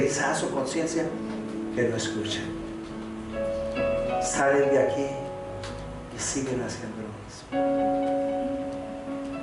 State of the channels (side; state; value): both; identical; correlation 1.00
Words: su conciencia que no escuchan. Salen de aquí y siguen haciendo lo mismo.